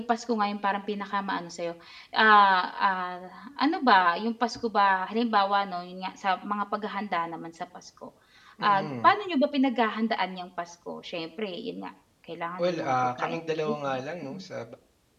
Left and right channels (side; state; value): both; identical; correlation 1.00